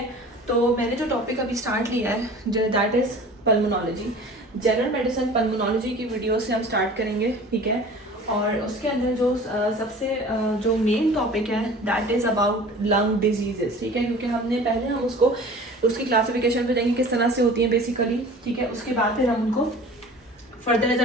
तो मैंने जो टॉपिक अभी स्टार्ट लिया है that is pulmonology. General medicine pulmonology की वीडियो से हम स्टार्ट करेंगे। ठीक है, और उसके अंदर जो सबसे जो मेन टॉपिक है that is about lung diseases. ठीक है, क्योंकि हम उसको उसकी क्लासिफिकेशन पे देंगे किस तरह से होती है बेसिकली। ठीक है, उसके बाद फिर हम उनको further as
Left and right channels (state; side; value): normal; both; correlation 0.43